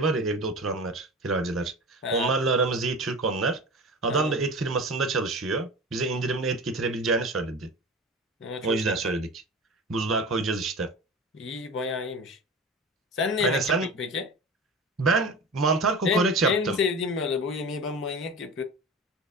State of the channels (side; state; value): both; normal; correlation 0.33